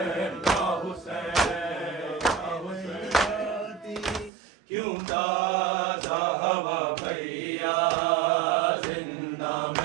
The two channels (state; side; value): drops out; left; at 4.3 s